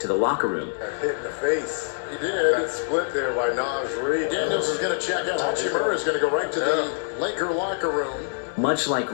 to the locker room. Hit in the face. He did. That split there by Naz Reid. Daniels is going to check out. Hachimura is going to go right to the Laker locker room. Much like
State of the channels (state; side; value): silent; right; 62 dB below the other